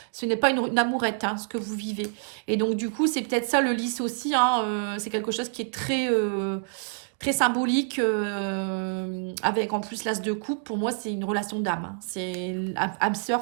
Ce n'est pas une amourette, hein, ce que vous vivez. Et donc, du coup, c'est peut-être ça le lys aussi, hein. C'est quelque chose qui est très symbolique, avec en plus l'as de coupe. Pour moi, c'est une relation d'âme, hein. C'est âme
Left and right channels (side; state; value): left; silent; digital silence